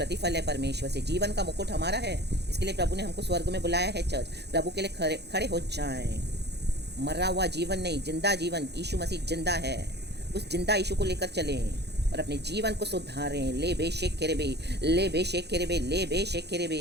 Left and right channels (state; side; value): late; left; 0.49 ms